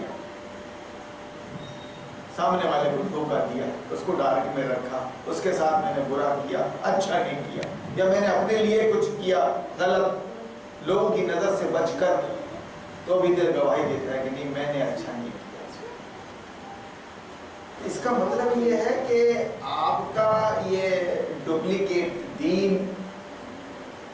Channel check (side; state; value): both; identical; correlation 1.00